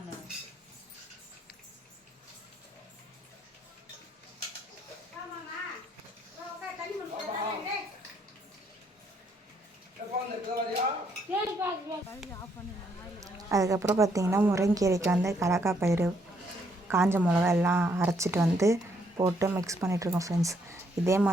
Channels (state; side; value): normal; both; correlation 0.71